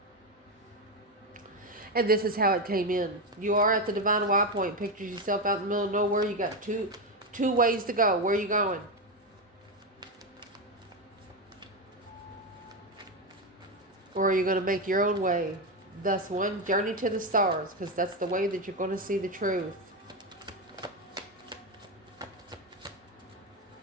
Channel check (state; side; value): normal; both; correlation 0.11